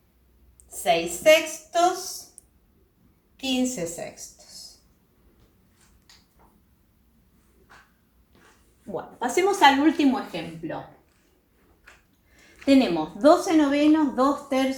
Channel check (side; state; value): both; identical; correlation 1.00